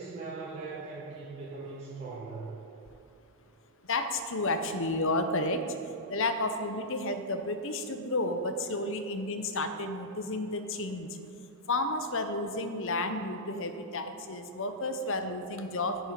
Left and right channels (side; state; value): both; normal; correlation -0.15